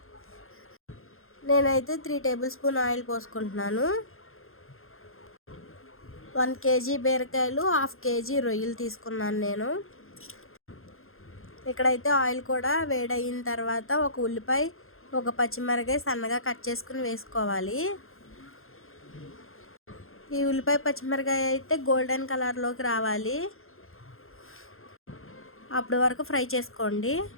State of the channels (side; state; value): right; late; 0.61 ms